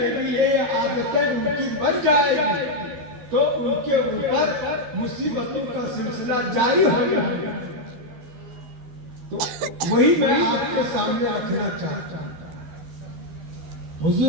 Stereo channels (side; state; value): left; late; 13 ms